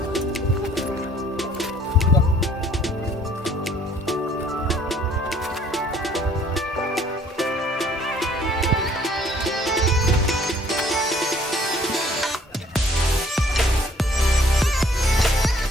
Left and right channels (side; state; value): both; normal; correlation 0.59